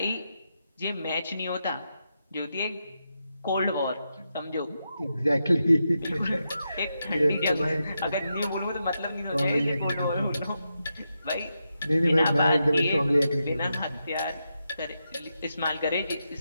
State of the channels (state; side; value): inverted; both; correlation -0.86